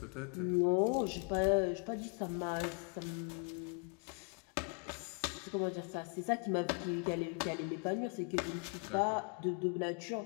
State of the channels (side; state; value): right; quieter; 39.8 dB